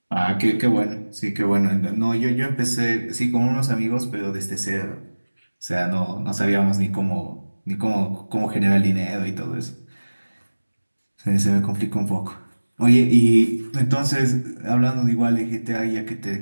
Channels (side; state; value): both; inverted; correlation -1.00